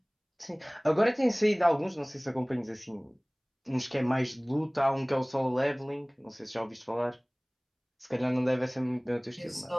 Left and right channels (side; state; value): both; identical; correlation 1.00